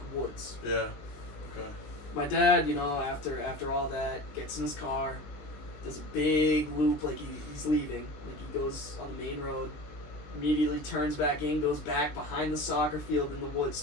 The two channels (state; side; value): late; right; 19 ms